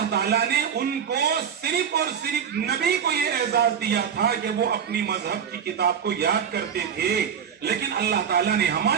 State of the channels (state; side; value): quieter; left; 7.8 dB